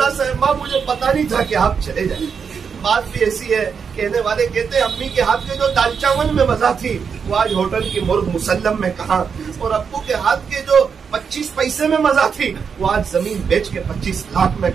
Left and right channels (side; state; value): left; quieter; 6.3 dB